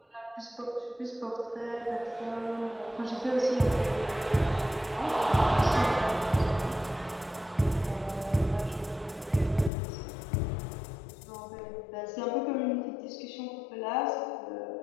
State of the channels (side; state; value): right; drops out; at 9.7 s